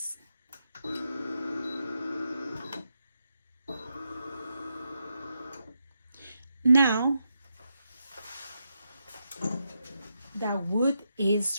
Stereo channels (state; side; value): inverted; both; correlation -0.84